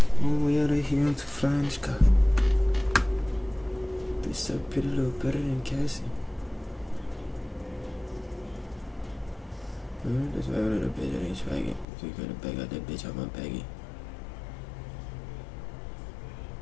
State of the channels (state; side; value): drops out; right; at 11.9 s